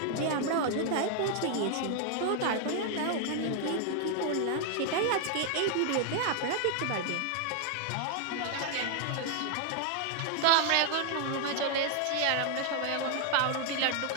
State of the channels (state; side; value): different; both; correlation 0.00